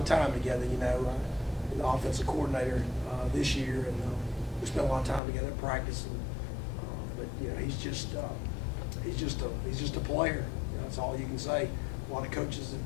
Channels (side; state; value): right; drops out; at 5.2 s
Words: time together. The offensive coordinator this year, and we spent a lot of time together at practice. But he's just a player. That's all you can say. A lot of coaches have